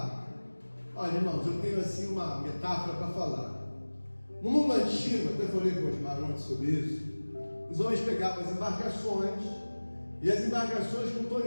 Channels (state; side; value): inverted; both; correlation -1.00